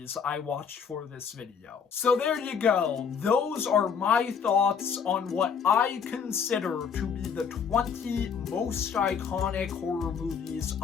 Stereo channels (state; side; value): quieter; right; 6.6 dB